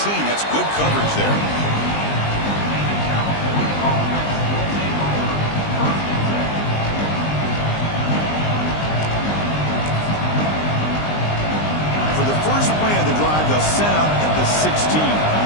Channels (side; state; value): right; late; 20 ms